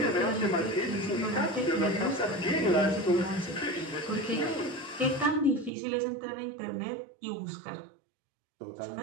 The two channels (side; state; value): left; drops out; at 5.7 s